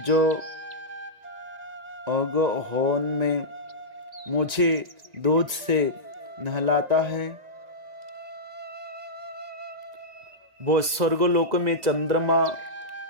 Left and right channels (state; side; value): late; left; 2.0 ms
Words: जो अगहन में मुझे दूध से नहलाता है वो स्वर्गलोक में चंद्रमा